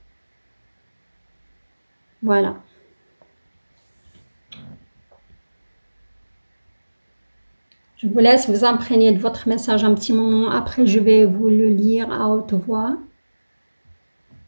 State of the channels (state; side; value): inverted; both; correlation -1.00